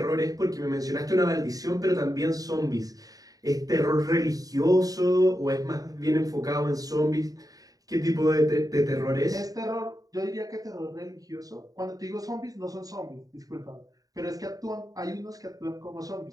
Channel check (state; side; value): late; left; 0.18 ms